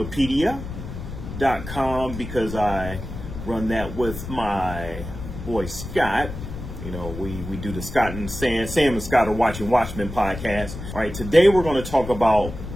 because I run that with my boy Scott. You know, we do the Scott and Sam and Scott are watching Watchmen podcast. All right, today we're going to talk about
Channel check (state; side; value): noise; left; rumble, 9 dB below the sound